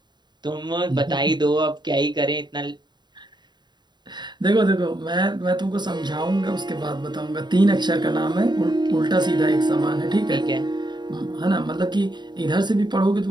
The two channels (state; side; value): late; left; 0.21 ms